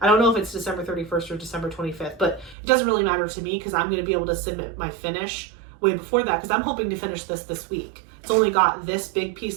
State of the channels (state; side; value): drops out; left; at 2.6 s